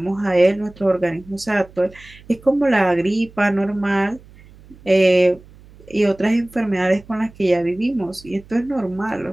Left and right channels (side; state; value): right; noise; hum, 23 dB below the sound